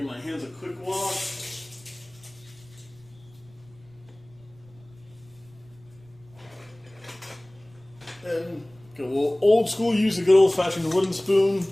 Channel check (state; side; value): noise; right; rumble, 27 dB below the sound